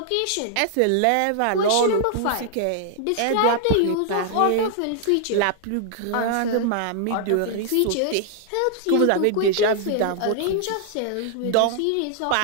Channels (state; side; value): different; both; correlation -0.01